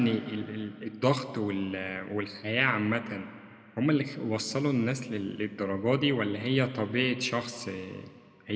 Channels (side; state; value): both; identical; correlation 1.00